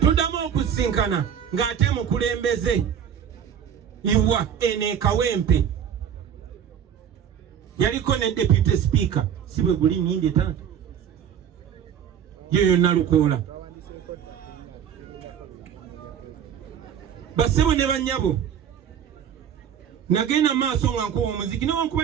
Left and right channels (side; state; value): left; quieter; 8.6 dB